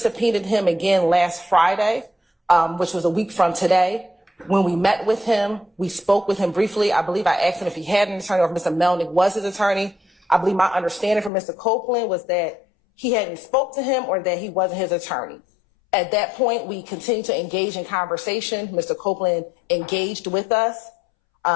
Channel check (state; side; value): drops out; right; at 11.3 s